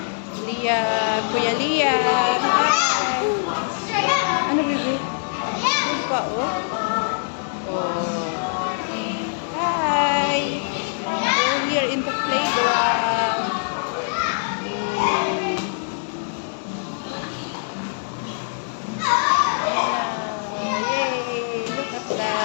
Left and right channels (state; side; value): silent; right; digital silence